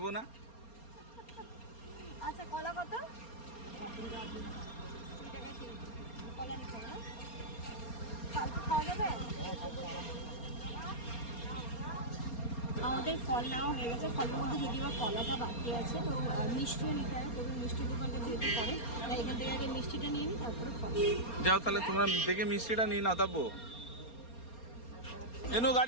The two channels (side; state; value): right; late; 4.3 ms